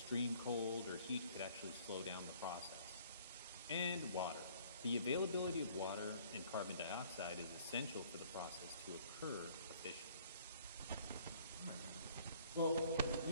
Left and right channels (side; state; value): both; inverted; correlation -0.58